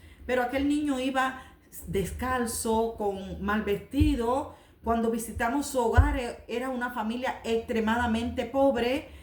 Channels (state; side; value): identical; both; correlation 1.00